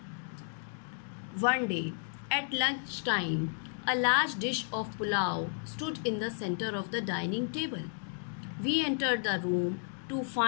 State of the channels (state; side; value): silent; right; digital silence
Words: One day at lunchtime, a large dish of pulao stood in the center of the dining table. We entered the room to